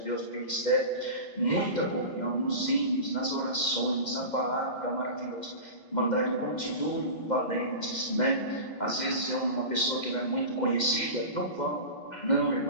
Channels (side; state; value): right; late; 2.1 ms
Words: do ministério, muita comunhão nos hinos, nas orações, na palavra maravilhosa. Irmandade, continue valentes, né? Às vezes é uma pessoa que não é muito conhecida, não vão. Não,